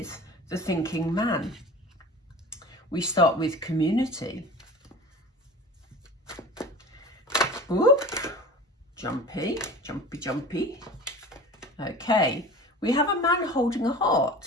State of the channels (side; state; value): both; normal; correlation 0.38